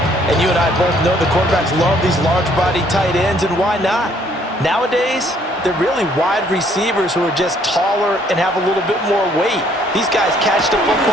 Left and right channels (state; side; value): normal; both; correlation 0.64